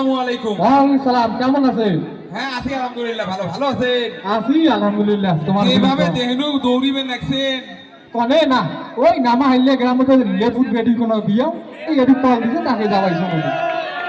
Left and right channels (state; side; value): identical; both; correlation 1.00